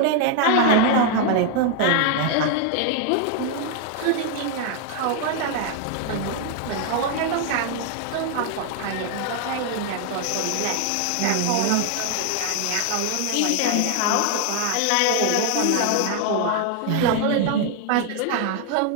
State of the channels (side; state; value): both; different; correlation 0.00